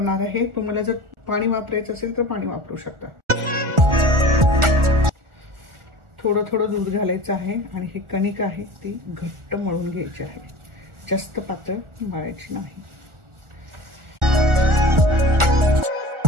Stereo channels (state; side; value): late; left; 1.4 ms